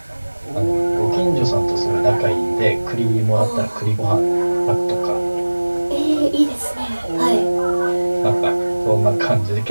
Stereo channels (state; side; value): inverted; both; correlation -1.00